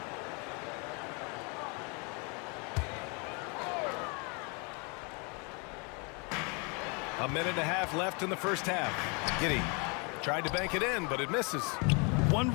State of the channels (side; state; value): right; quieter; 32.9 dB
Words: A minute and a half left in the first half. Giddey tried to bank it in, but it misses. One